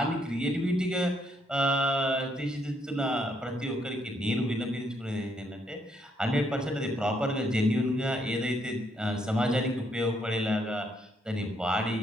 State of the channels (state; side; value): normal; both; correlation 0.73